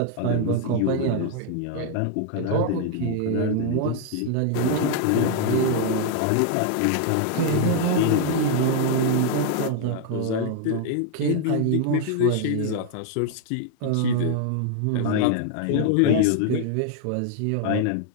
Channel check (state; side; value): different; both; correlation 0.00